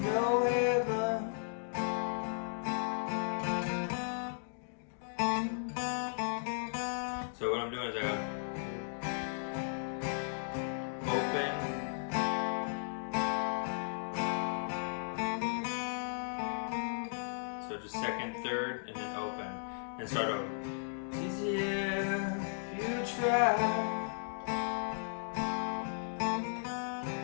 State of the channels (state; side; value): silent; right; digital silence